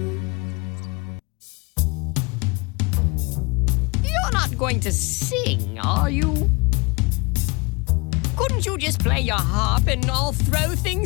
You're not going to sing, are you? Couldn't you just play your harp and I'll throw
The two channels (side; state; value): right; quieter; 28.1 dB